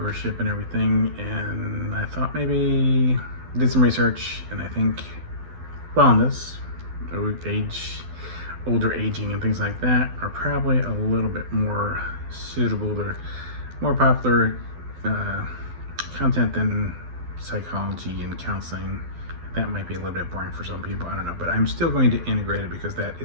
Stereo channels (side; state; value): left; late; 12 ms